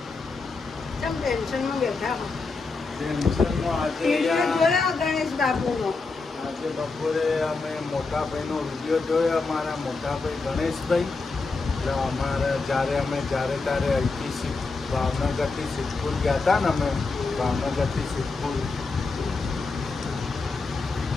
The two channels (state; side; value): quieter; right; 4.0 dB